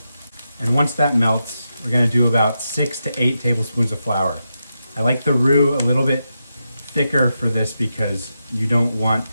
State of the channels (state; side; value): inverted; both; correlation -0.87